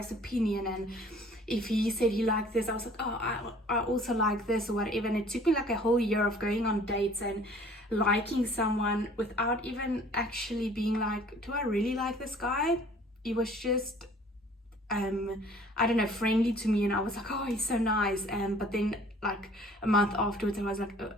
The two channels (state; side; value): normal; both; correlation 0.53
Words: opinion, and if he said he liked this, I was like, oh, I also like this or whatever. And it took me like a whole year of going on dates and liking someone without even actually being like, do I really like this guy? He was just I don't know, friendly to me, and I was like, oh, he's so nice. But then like a month afterwards I was like, oh,